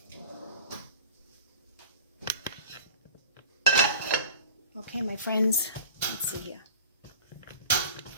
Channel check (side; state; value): both; inverted; correlation -0.41